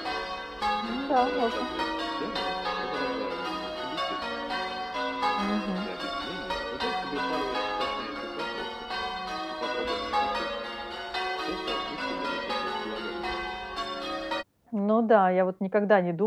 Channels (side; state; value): both; identical; correlation 1.00